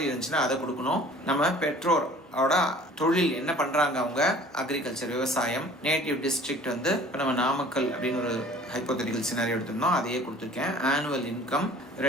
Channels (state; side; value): normal; both; correlation 0.49